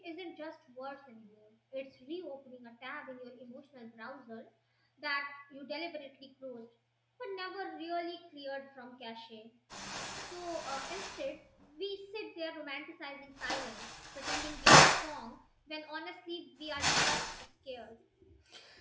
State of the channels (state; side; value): identical; both; correlation 1.00